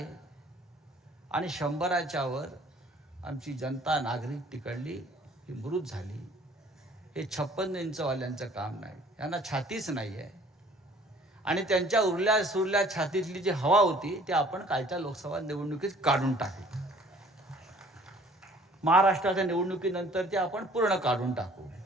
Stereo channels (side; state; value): both; normal; correlation 0.55